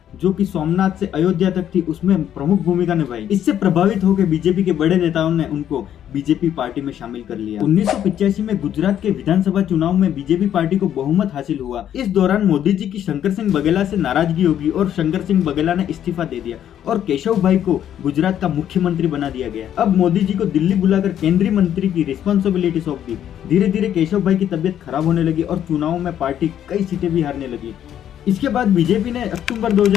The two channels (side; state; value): right; quieter; 10.3 dB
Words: जो कि सोमनाथ से अयोध्या तक थी, उसमें प्रमुख भूमिका निभाई। इससे प्रभावित होकर बीजेपी के बड़े नेताओं ने उनको बीजेपी पार्टी में शामिल कर लिया। 1985 में गुजरात के विधानसभा चुनाव में बीजेपी पार्टी को बहुमत हासिल हुआ। इस दौरान मोदी जी की शंकर सिंह बघेला से नाराजगी होगी और शंकर सिंह बघेला ने इस्तीफा दे दिया और केशव भाई को गुजरात का मुख्यमंत्री बना दिया गया। अब मोदी जी को दिल्ली बुलाकर केंद्रीय मंत्री की रिस्पॉन्सिबिलिटी सौंप दी। धीरे धीरे केशव भाई की तबियत खराब होने लगी और चुनाव में पार्टी कई सीटें भी हारने लगी। इसके बाद बीजेपी ने अक्टूबर